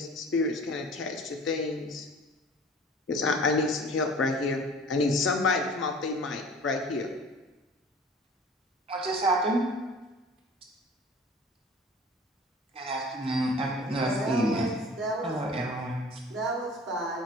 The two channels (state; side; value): normal; both; correlation 0.45